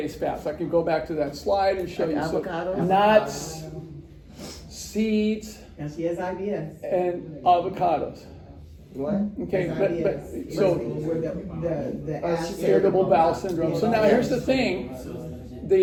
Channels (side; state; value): both; identical; correlation 1.00